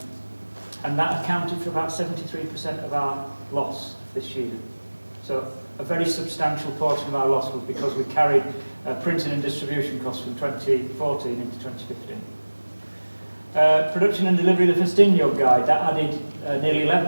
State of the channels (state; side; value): inverted; both; correlation -1.00